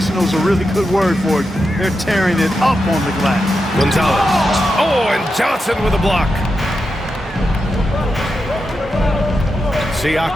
is a really good word for it. They're tearing it up on the glass. Gonzalez. Oh, and Johnson with a block.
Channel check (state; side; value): normal; both; correlation 0.88